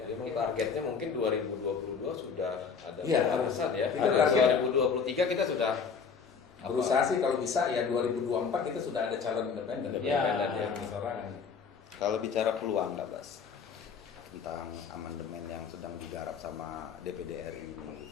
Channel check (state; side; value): quieter; right; 5.9 dB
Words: Jadi memang targetnya mungkin 2022 sudah ada Iya, pembahasan ya. kita Ada target- 2023 kita sudah berusaha sih kalau bisa ya 2024 kita sudah ada calon independen. Ya. yang persorangan. Kalau bicara peluang nggak Bas tentang amandemen yang sedang digarap sama DPD RI